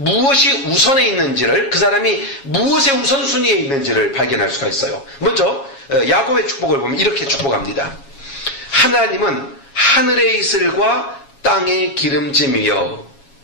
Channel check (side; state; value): right; late; 7.3 ms